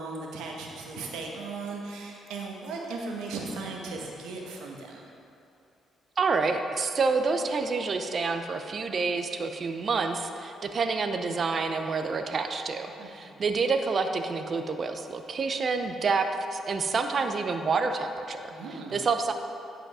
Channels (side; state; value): left; quieter; 3.9 dB